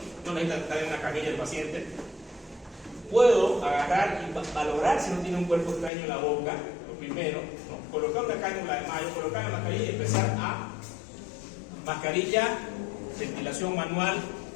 no necesita estar en una camilla el paciente, puedo agarrar y valorar si no tiene un cuerpo extraño en la boca, lo primero, ¿no?, colocar una cánula de mayo, colocar la mascarilla y empezar a mascarilla, ventilación manual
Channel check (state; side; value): drops out; right; at 5.9 s